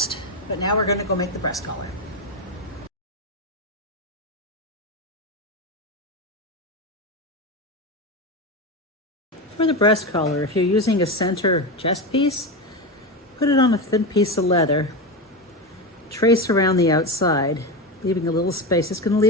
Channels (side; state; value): both; normal; correlation 0.17